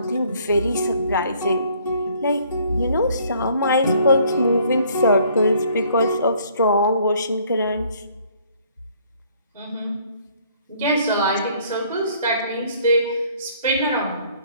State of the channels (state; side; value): inverted; both; correlation -0.61